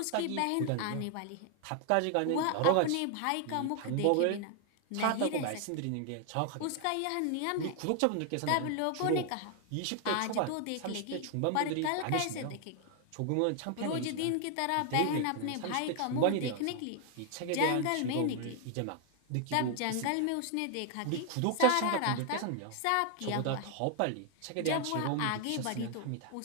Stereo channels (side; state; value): both; different; correlation 0.00